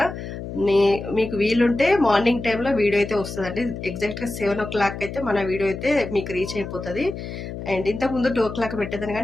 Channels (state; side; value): noise; left; hum, 8 dB below the sound